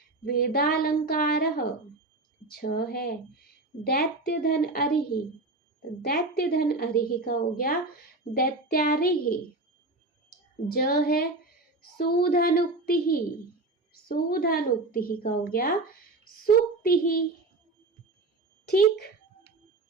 वेदालंकारः। छ है दैत्यधन अरिहि, दैत्यधन अरिहि का हो गया दैत्यारिहि। ज है सूधनुक्ति, सूधनुक्ति का हो गया सूक्ति। ठीक,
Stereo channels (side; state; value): left; quieter; 3.1 dB